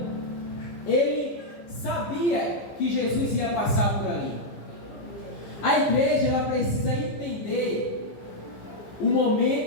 ele sabia que Jesus ia passar por ali. A igreja, ela precisa entender o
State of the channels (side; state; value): right; late; 15 ms